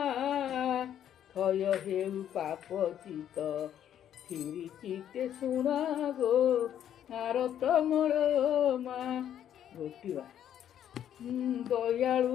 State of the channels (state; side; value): quieter; right; 10.3 dB